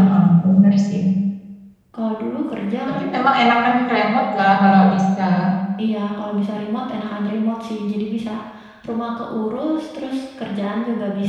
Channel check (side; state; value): both; identical; correlation 1.00